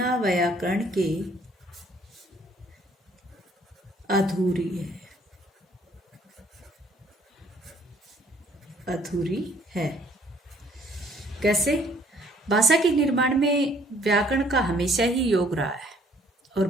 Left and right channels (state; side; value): normal; both; correlation 0.61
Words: अधूरी है। कैसे? भाषा के निर्माण में व्याकरण का हमेशा ही योग रहा है और